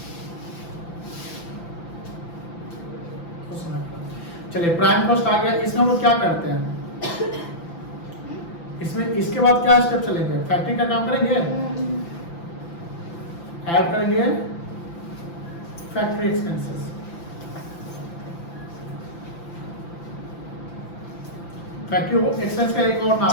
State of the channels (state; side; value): late; right; 5.9 ms